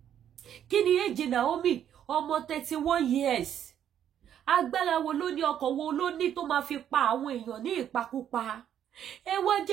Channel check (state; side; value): quieter; left; 9.9 dB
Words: Kí ni èjì Naomi? Ọmọ 31 years. Agbára wo ló ní, ọkọ̀ wo ló ní tó máa fi pa àwọn èèyàn ní ìpakúpa? Ẹ wá